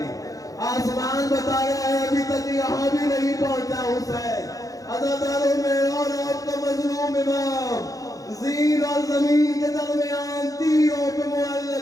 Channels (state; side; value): late; right; 0.17 ms